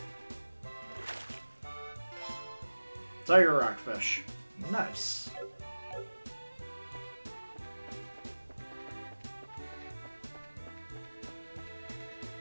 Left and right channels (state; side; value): inverted; both; correlation -1.00